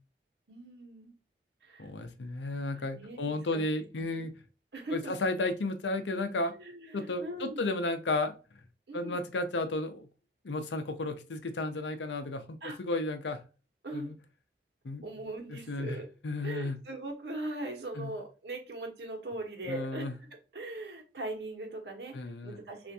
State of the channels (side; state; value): both; normal; correlation 0.22